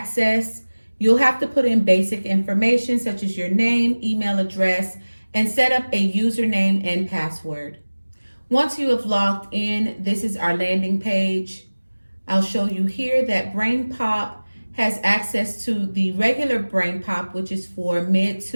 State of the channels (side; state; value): both; inverted; correlation -1.00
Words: You'll have to put in basic information such as your name, email address, and set up a username and password. Once you have logged in, this is our landing page. I'll show you here that BrainPop has access to the regular BrainPop, which is for mid